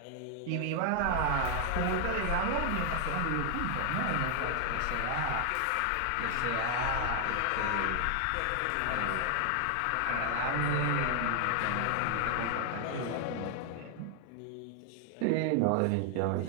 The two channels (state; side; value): different; both; correlation 0.00